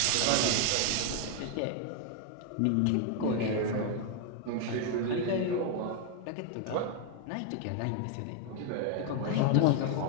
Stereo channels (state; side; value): different; both; correlation 0.00